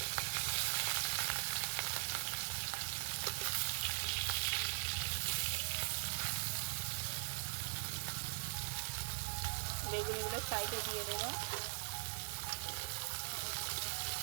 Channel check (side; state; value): left; silent; digital silence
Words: বেগুনগুলো সাইডে দিয়ে দেব।